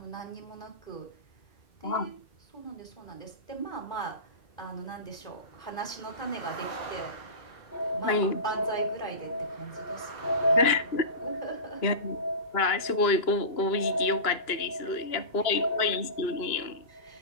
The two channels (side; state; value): right; late; 2.9 ms